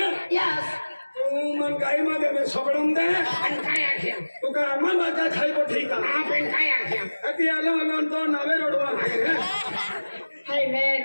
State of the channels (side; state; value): both; inverted; correlation -1.00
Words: Yes. तू मन काही मध्ये सोडून दे आणि काय आख्या तू का आम्हाला काय खायको ठीक आहे आपण काय आख्या ती आलो तो नवे रोडवा Hey man.